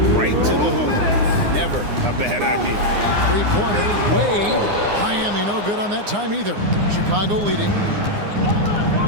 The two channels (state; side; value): late; left; 9.7 ms